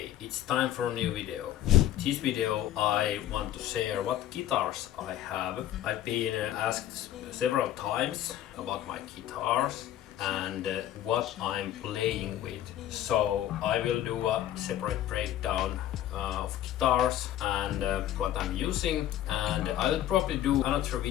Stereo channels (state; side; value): quieter; right; 12.3 dB